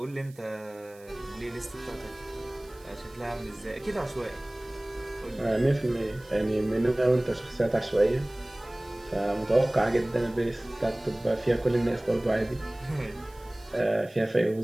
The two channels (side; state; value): right; noise; hiss, 26 dB below the sound